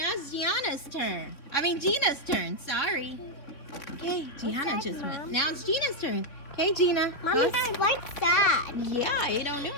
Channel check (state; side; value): late; right; 3.4 ms